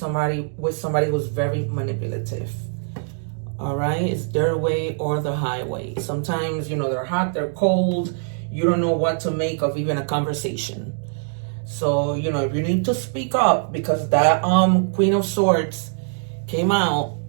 who's very manipulative. All right. It's their way or the highway. Sometimes, you know, they're hot, they're cold. You don't know what to make of even a conversation. So, you know, if you need to speak up, because that Queen of Swords came out,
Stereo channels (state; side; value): silent; left; digital silence